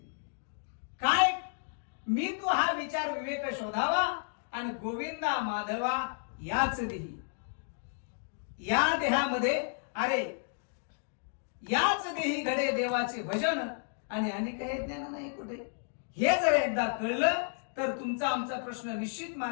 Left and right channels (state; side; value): silent; right; digital silence